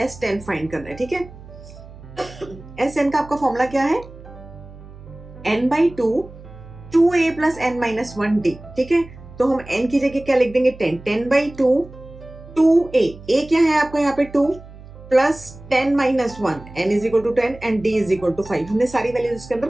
s10 फाइंड करना है. ठीक है. sn का आपका फॉर्मूला क्या है? n by 2 2a plus n minus 1d. ठीक है. तो हम n की जगह क्या लिख देंगे? 10. 10 by 2 2a. a क्या है आपका यहाँ पे? 2 plus 10 minus 1. n is equal to 10 and d is equal to 5. हमने सारी वैल्यूज इसके अंदर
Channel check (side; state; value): right; noise; hum, 18 dB below the sound